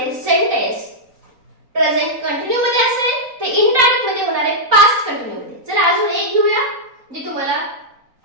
सेंटेन्स प्रेझेंट कंटिन्यू मध्ये असेल ते इनडायरेक्ट मध्ये होणार आहे पास्ट कंटिन्यू मध्ये. चला अजून एक घेऊया जे तुम्हाला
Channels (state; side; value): late; left; 3.9 ms